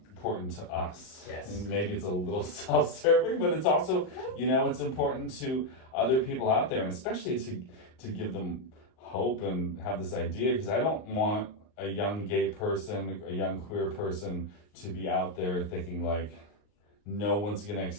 to us. Yes. And maybe it's a little self-serving, but it's also, it's important to other people out there, and especially to give them hope and have this idea, because I don't want a young gay person, a young queer person to be out there thinking like, no one's going to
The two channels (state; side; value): late; right; 39 ms